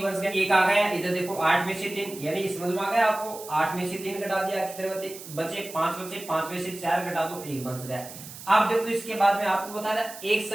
बच गया, 1 आ गया। इधर देखो 8 में से 3, यानी समझ में आ गया आपको, 8 में से 3 घटा दिया कितने बचे 5 बचे, 5 में से 4 घटा दो 1 बच गया। अब देखो इसके बाद में आपको बता रहा एक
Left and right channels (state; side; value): noise; right; hiss, 14 dB below the sound